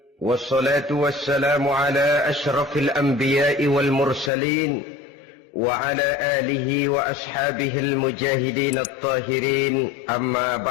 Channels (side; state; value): right; drops out; at 4.3 s